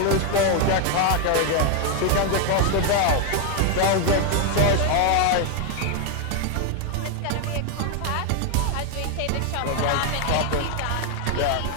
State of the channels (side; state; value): both; different; correlation 0.01